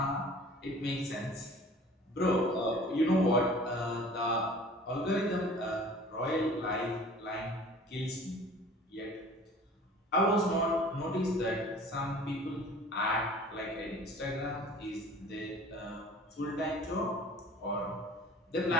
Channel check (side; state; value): both; normal; correlation 0.47